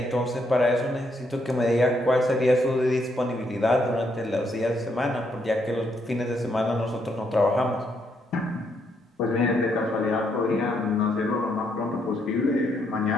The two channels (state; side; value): normal; both; correlation 0.75